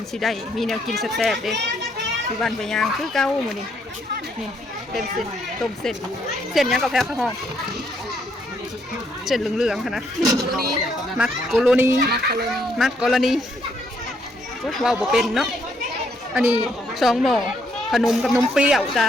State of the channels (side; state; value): both; normal; correlation 0.72